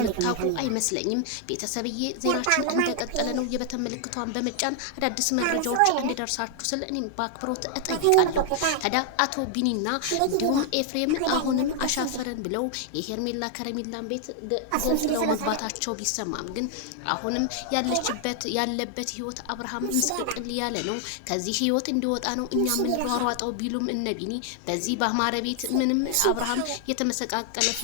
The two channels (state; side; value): different; both; correlation 0.00